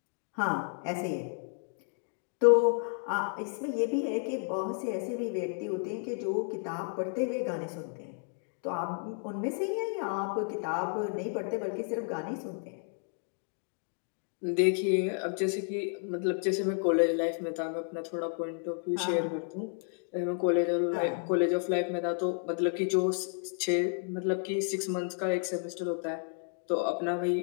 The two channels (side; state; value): right; silent; 56 dB below the other